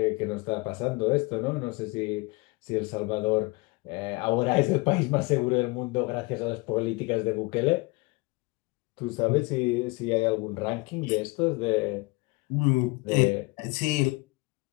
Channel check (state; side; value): quieter; right; 25.7 dB